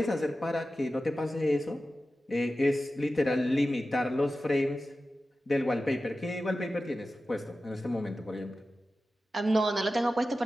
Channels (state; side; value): normal; both; correlation 0.94